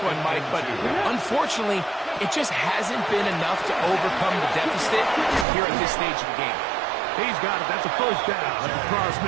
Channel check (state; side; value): drops out; left; at 5.5 s